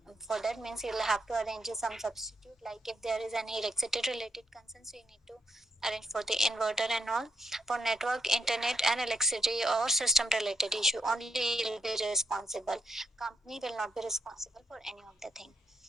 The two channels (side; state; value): both; normal; correlation 0.78